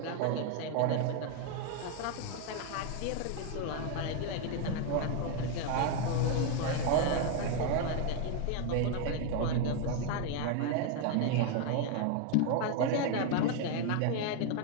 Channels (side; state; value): both; different; correlation 0.01